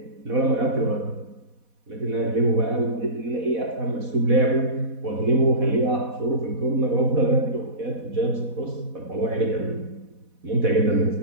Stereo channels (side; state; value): left; late; 4.1 ms